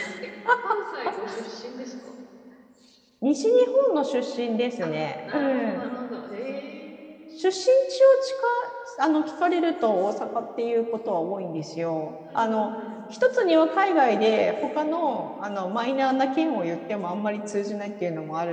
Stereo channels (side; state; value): both; identical; correlation 1.00